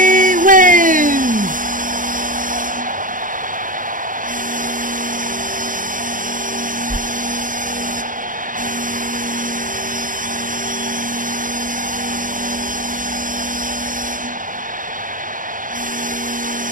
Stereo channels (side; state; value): left; late; 0.39 ms